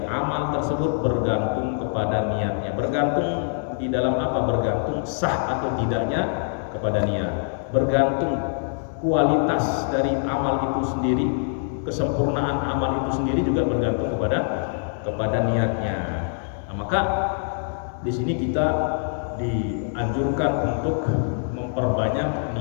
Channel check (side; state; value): right; silent; digital silence